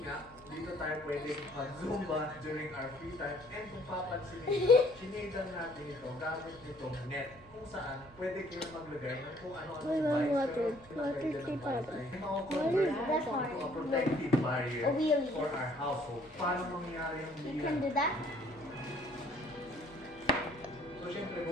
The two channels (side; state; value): right; noise; hum, 23 dB below the sound